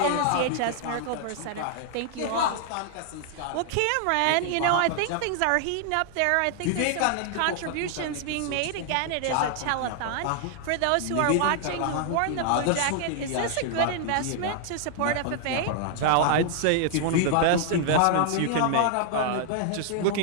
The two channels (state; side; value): different; both; correlation 0.00